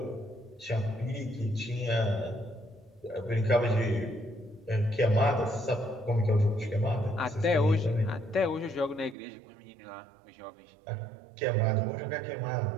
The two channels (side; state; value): left; drops out; at 9.2 s